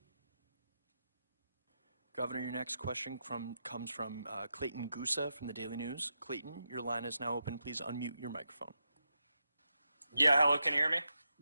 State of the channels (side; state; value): both; inverted; correlation -0.86